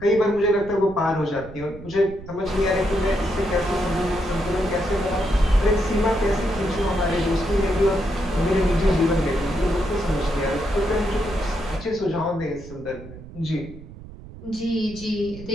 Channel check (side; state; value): right; noise; rumble, 15 dB below the sound